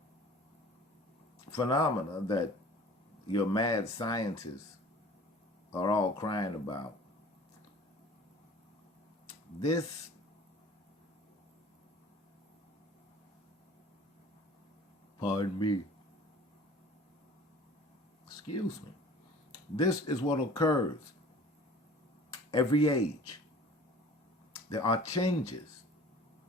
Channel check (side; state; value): both; normal; correlation 0.46